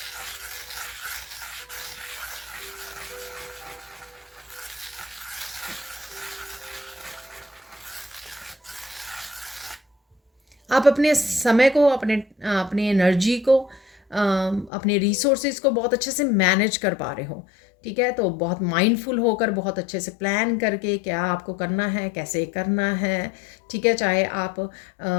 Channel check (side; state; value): right; drops out; at 14.7 s